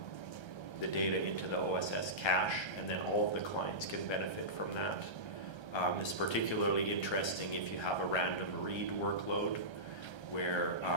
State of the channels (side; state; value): right; late; 1.3 ms